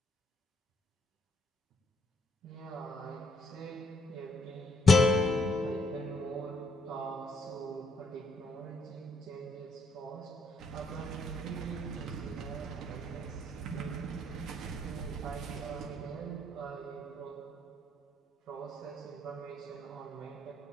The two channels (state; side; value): normal; both; correlation 0.71